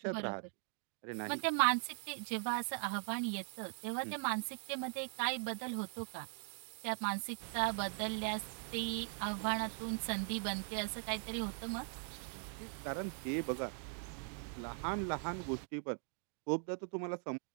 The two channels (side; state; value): left; silent; 51 dB below the other